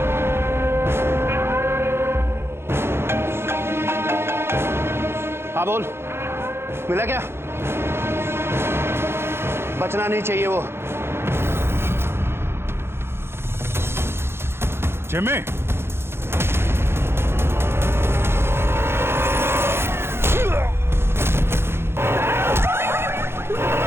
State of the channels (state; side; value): late; left; 0.12 ms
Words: हाँ बोल, मिला क्या? बचना नहीं चाहिए वो। Jimmy